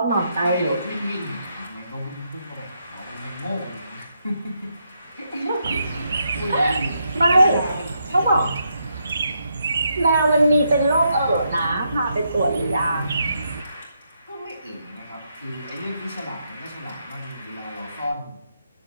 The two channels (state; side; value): inverted; both; correlation -0.80